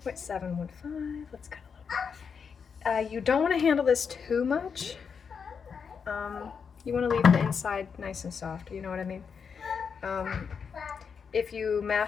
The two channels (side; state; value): right; quieter; 6.3 dB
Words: let's cut a little bit off. You don't want to handle this too much. You want to leave the inside nice and soft, you know what I mean? if you